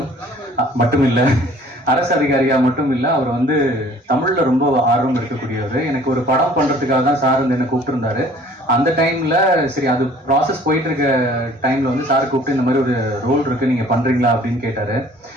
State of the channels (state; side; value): normal; both; correlation 0.53